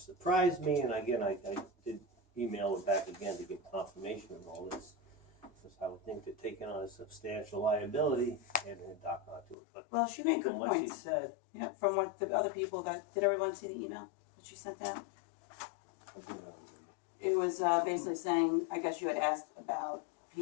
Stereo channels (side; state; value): right; drops out; at 9.6 s